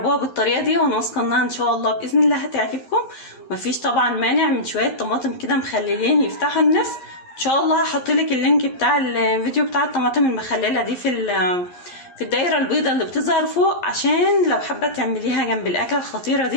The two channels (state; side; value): late; right; 11 ms